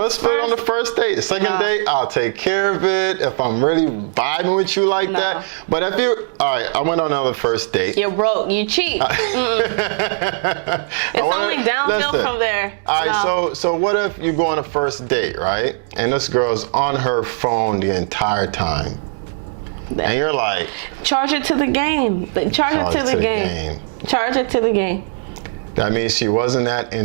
let's put it on the first date. The second date, I'll take care of it if I'm really vibing with you like that. But if you, all right, I went on another first date. You're broke. You cheat. It's only downhill from there. All right, so what if you go on a first date, right? And this girl's on her phone the entire time. And you're like, charge it to the game. Charge it to the game. Charge it to the game. That means she wasn't that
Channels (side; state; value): left; silent; 62 dB below the other